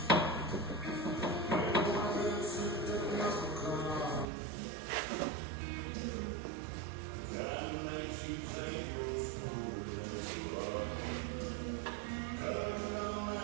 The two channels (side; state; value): left; drops out; at 4.2 s